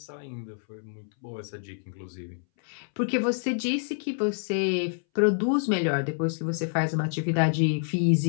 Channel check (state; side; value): silent; right; 60 dB below the other